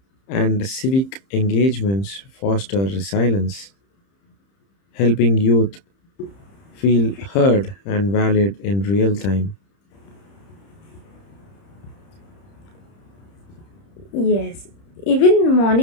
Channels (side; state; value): right; late; 30 ms